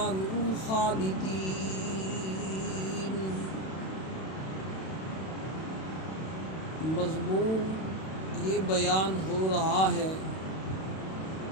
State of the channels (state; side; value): late; right; 32 ms